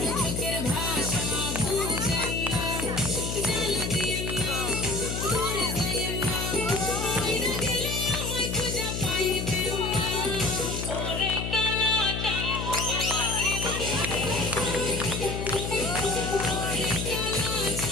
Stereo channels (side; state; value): left; noise; hum, 3 dB below the sound